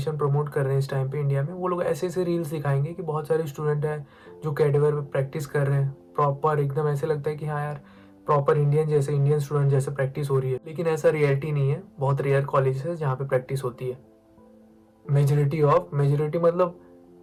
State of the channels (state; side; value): identical; both; correlation 1.00